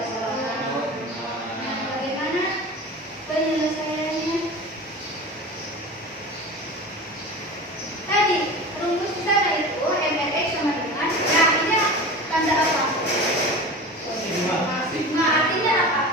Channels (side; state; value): both; normal; correlation 0.32